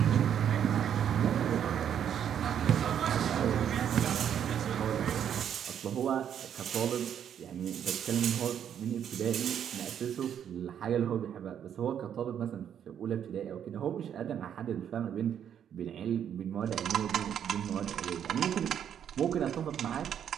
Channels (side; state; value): left; quieter; 9.1 dB